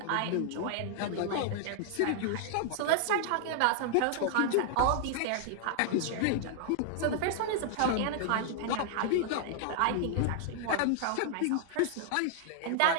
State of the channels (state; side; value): different; both; correlation -0.01